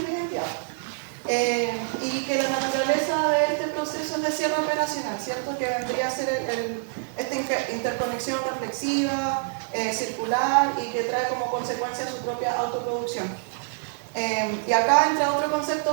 la identidad. Y que la naturaleza de este proceso es de cierre operacional, ¿cierto? Que vendría a ser esta interconexión reflexiva, circular, y que trae como consecuencia su propia autoproducción. Y acá entra otro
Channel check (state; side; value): silent; left; digital silence